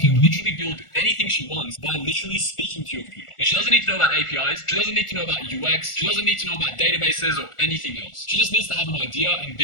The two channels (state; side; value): late; right; 1.4 ms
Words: literally build anything she wants by literally speaking to your computer. And she doesn't need to know about APIs, she doesn't need to know about UX, she doesn't need to know about databases or anything else. She just needs to have an idea and